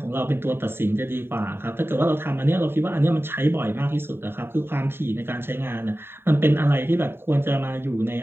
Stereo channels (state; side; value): late; left; 0.11 ms